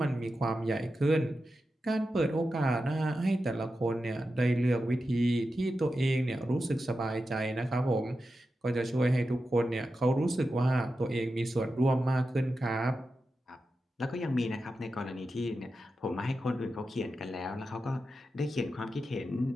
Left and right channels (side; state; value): both; normal; correlation 0.90